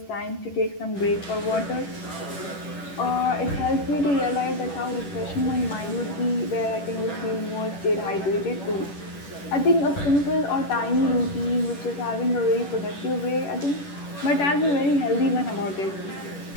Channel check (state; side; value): late; right; 10 ms